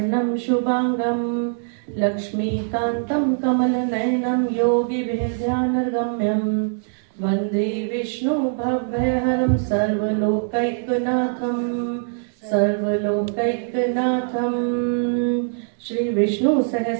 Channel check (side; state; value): left; silent; digital silence